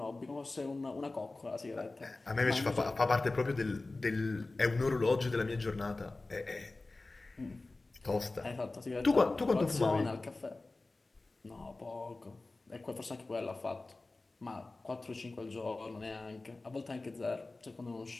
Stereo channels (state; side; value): quieter; right; 3.2 dB